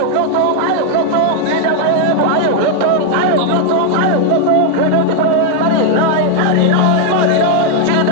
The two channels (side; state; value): both; different; correlation 0.00